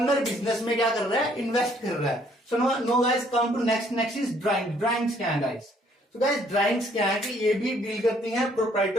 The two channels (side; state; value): both; normal; correlation 0.64